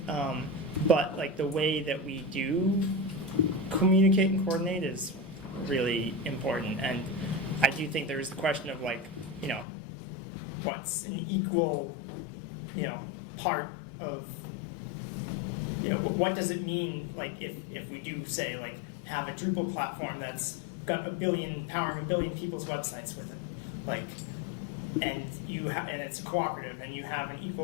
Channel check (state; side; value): drops out; right; at 9.7 s